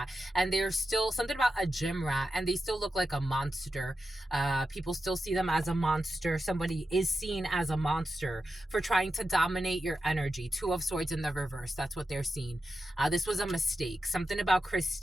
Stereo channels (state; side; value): normal; both; correlation 0.90